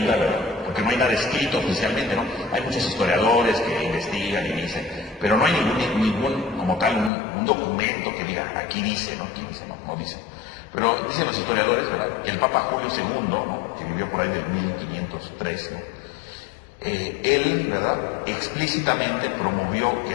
¿verdad? Porque no hay nada escrito oficialmente, ¿no? Hay muchos historiadores que investigan y dicen, pero no hay ningún como tal, un documento que diga, aquí dice, ¿no? Aquí dice, no dice. Pero dicen los historiadores, ¿verdad?, que el Papa Julio II, ¿no?, que vivió por ahí del 1503, ¿no?, él, ¿verdad?, explícitamente promovió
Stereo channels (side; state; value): right; drops out; at 7.1 s